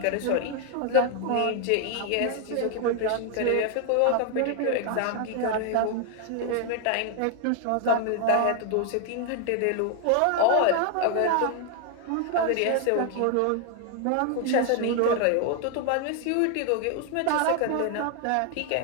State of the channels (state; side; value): different; both; correlation 0.00